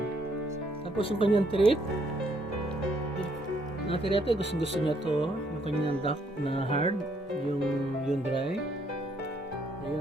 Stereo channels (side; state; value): both; normal; correlation 0.70